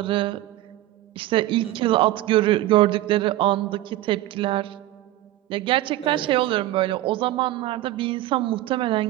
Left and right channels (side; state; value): left; quieter; 15.6 dB